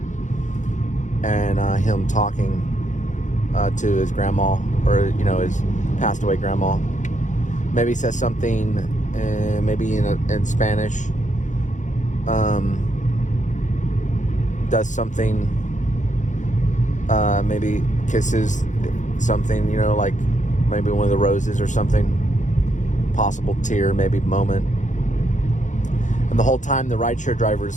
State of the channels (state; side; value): late; right; 0.36 ms